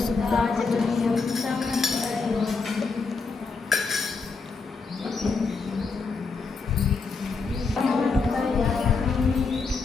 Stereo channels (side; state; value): right; quieter; 4.5 dB